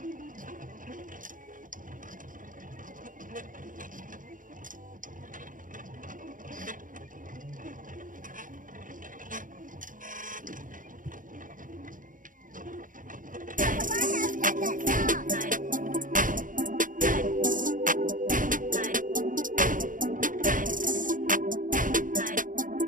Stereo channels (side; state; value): left; late; 0.39 ms